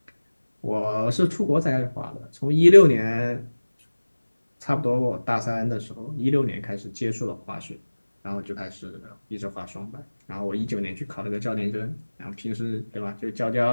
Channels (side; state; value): both; inverted; correlation -1.00